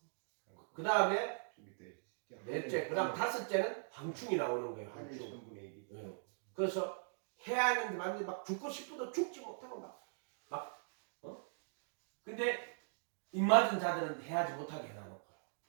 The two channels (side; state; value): left; silent; digital silence